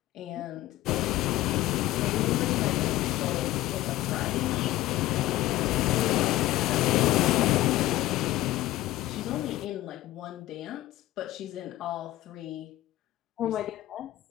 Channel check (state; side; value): quieter; right; 16.1 dB